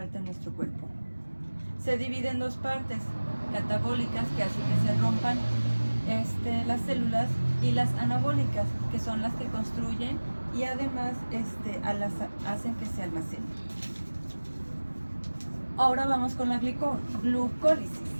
en nuestro cuerpo. Se divide en dos partes, catabólicas, que hacen que se rompan las células, y las anabólicas, que son las que construyen y además hacen que se almacenen. Ahora vamos con la glucólisis.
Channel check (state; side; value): inverted; both; correlation -1.00